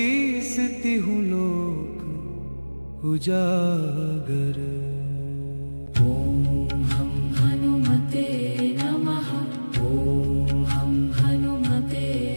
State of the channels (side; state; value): both; inverted; correlation -1.00